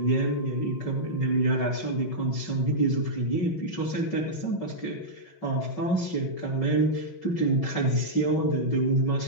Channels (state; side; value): late; right; 5.3 ms